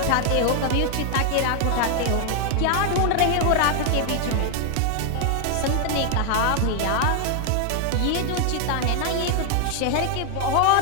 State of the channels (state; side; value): different; both; correlation 0.00